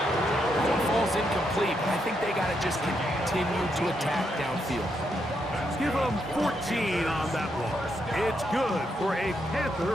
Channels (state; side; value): normal; both; correlation 0.80